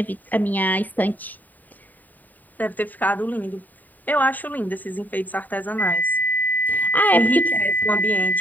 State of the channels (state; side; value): late; right; 0.085 ms